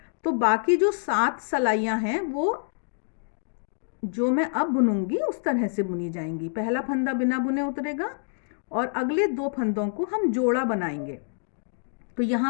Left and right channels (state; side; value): silent; right; digital silence